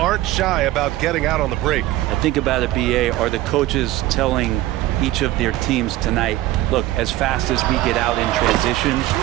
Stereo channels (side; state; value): left; quieter; 16.0 dB